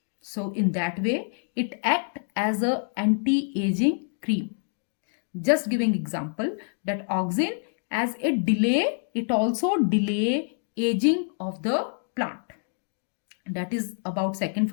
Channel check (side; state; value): right; silent; 60 dB below the other